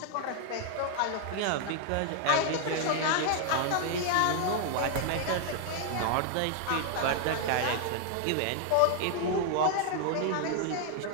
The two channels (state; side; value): different; both; correlation 0.00